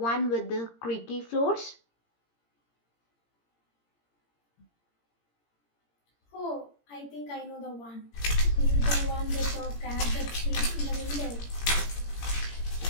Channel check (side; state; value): right; late; 17 ms